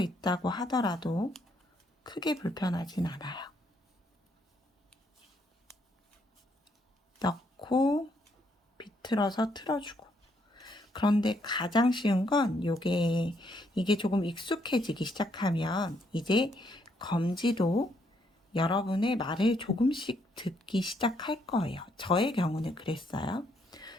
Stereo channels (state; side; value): normal; both; correlation 0.72